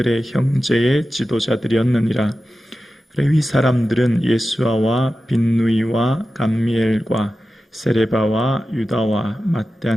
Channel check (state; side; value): normal; both; correlation 0.93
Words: 형제의 지도자들이었느니라. 레위 사람들은 예수아와 빈누이와 감미엘과 세레바와 유다와